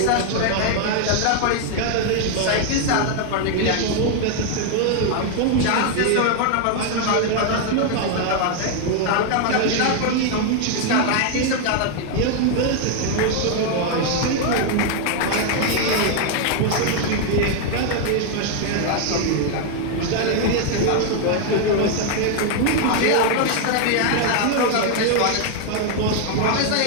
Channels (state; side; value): different; both; correlation 0.00